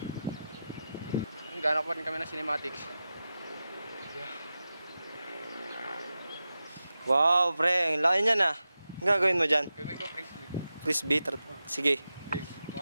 Gana pa rin kami ng cinematics. Wow, pre. Ang laki niyan ah. Ang gagawin mo dyan? Gagawin ko frisbee. Frisbee? Sige.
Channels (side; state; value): both; inverted; correlation -0.92